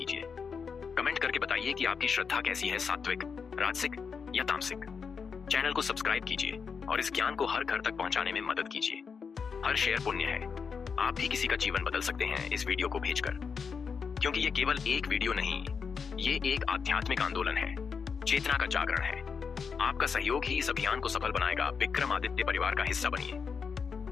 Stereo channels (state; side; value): quieter; right; 5.9 dB